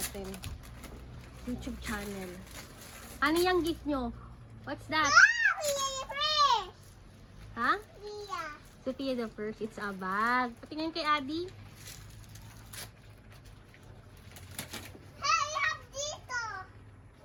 YouTube channel. Ano yung gift nyo? What's that? Ha? Sophia the First. It's a bag. Patingin kay Adi.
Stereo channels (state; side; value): identical; both; correlation 1.00